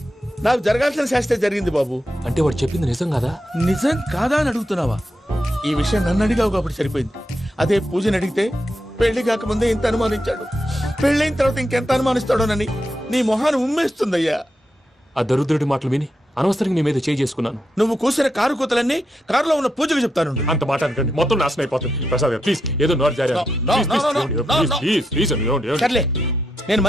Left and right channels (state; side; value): normal; both; correlation 0.84